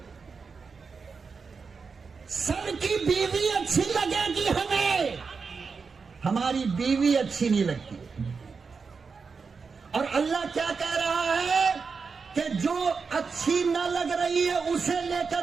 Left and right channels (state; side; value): quieter; left; 5.1 dB